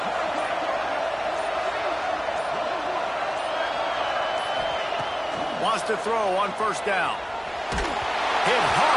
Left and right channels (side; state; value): both; identical; correlation 1.00